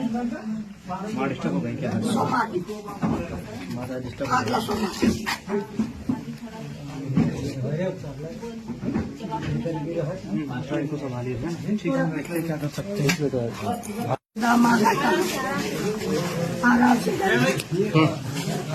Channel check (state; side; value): identical; both; correlation 1.00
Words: डिस्टर्ब हो गई क्या? इनको संभालिए, ठीक है, क्या कर सकते हैं।